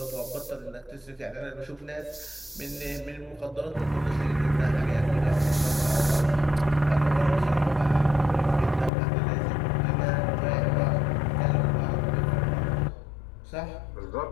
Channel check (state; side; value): drops out; right; at 8.9 s